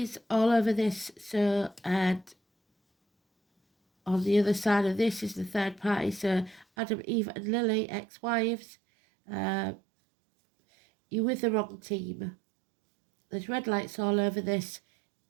all over this. So, and on the other side of this is the third party. So Adam, Eve and Lily, ex-wives. You're with the wrong team. There's red lights all over this.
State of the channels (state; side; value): drops out; left; at 6.7 s